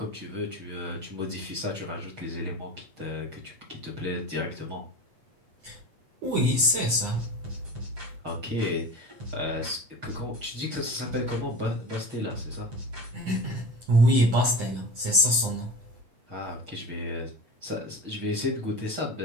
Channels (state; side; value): late; left; 8.4 ms